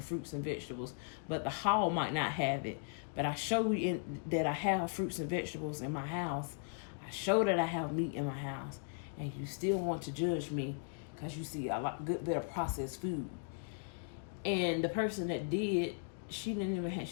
and vegetables, but the haul might not have it. But I show you that I have fruits and vegetables in my house. I show that I have meat in my house. And you still want to judge me because you see a good bit of processed food. And the person that did, she don't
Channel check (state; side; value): silent; right; digital silence